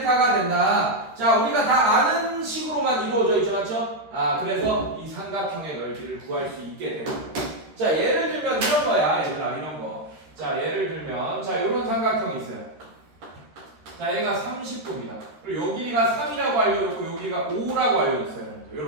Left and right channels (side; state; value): left; late; 13 ms